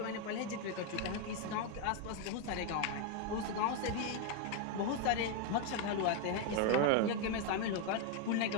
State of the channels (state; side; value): different; both; correlation 0.01